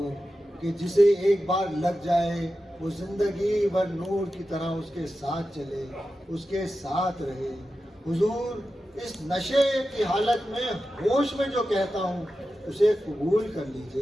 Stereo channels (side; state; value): both; normal; correlation 0.92